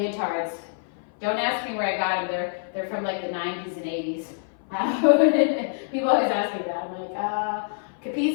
Don't ask me where I got them. They're from like the 90s and 80s. People always ask me that. I'm like,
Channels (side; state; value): right; silent; 56 dB below the other